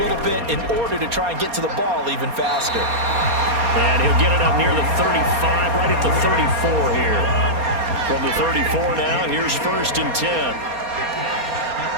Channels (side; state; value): left; late; 4.2 ms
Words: bit, in order to try and get to the ball even faster. And he'll get it up near the 35, right at the 34 here. From the 34 now, here's 1st and 10.